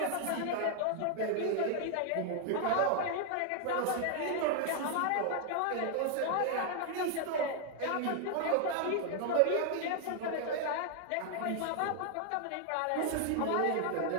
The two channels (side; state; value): both; different; correlation 0.00